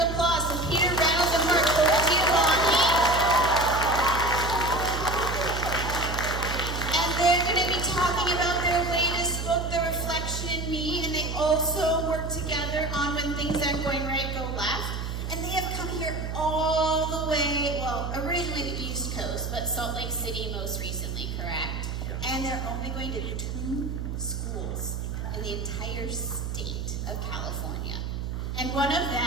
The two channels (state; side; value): noise; right; hum, 4 dB below the sound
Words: applause for Peter Reynolds and Marc Colagiovanni. And they're going to be talking about their latest book, The Reflection in Me, and they also work together on When Things Aren't Going Right, Go Left. And they have come here all the way, well, originally the East Coast, but Salt Lake City most recently, correct? Yeah. And they're only going to 2 schools in the entire state of California. And one of